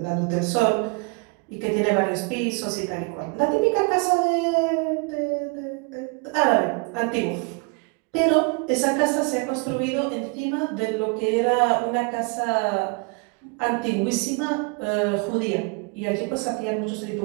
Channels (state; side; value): quieter; left; 31.7 dB